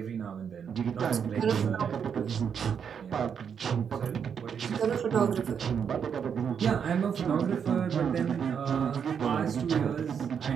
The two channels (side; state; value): left; quieter; 7.3 dB